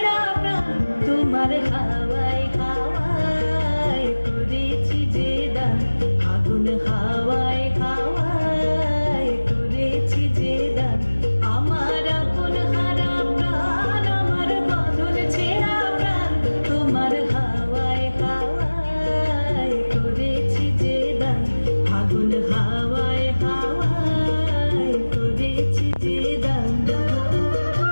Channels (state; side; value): inverted; both; correlation -1.00